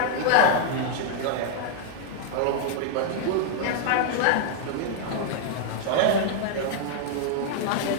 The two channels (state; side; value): different; both; correlation -0.01